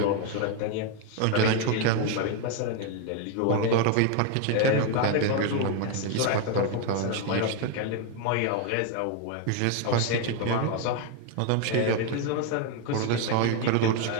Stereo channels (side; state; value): both; different; correlation 0.01